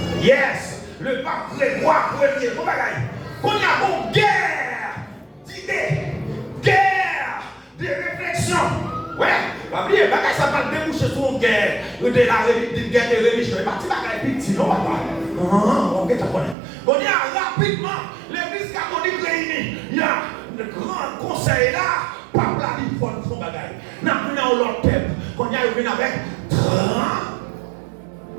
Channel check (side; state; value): left; drops out; at 16.6 s